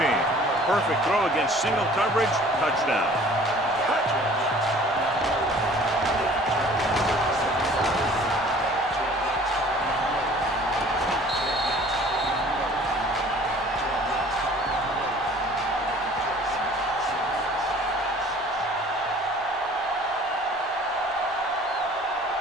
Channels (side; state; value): both; normal; correlation 0.50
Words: Perfect throw against single coverage. Touchdown.